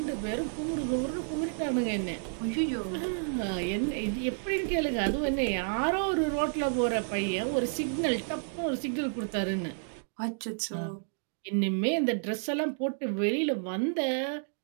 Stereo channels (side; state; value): left; silent; digital silence